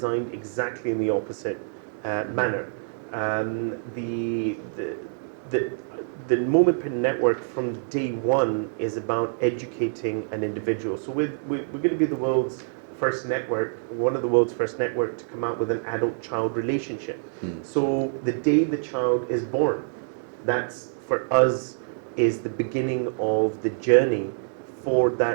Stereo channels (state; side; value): silent; left; digital silence